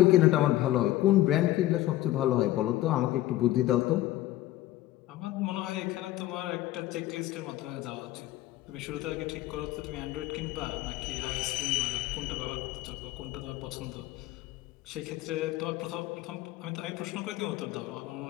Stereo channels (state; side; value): quieter; right; 15.4 dB